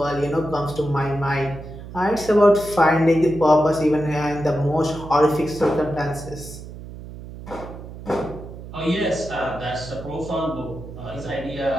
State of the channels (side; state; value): right; noise; hum, 13 dB below the sound